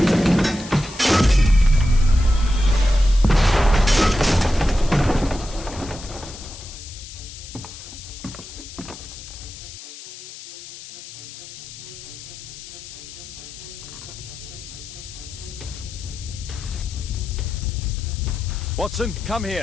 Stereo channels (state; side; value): noise; left; hiss, 14 dB below the sound